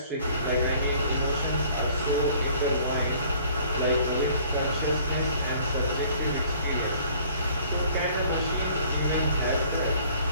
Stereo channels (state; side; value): inverted; both; correlation -0.55